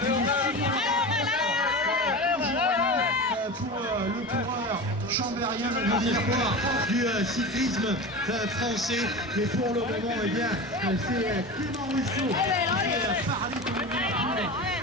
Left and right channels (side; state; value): both; normal; correlation 0.28